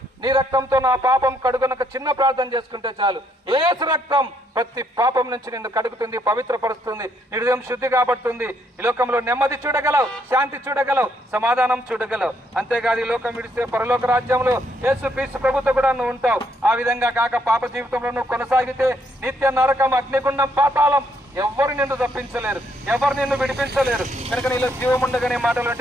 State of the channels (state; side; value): normal; both; correlation 0.72